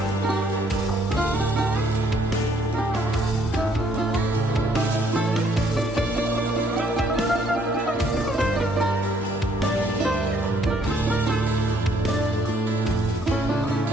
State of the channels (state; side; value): normal; both; correlation 0.65